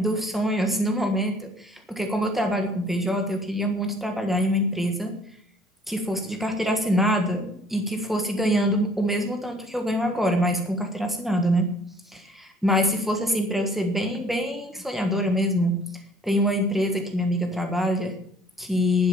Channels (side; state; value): both; normal; correlation 0.56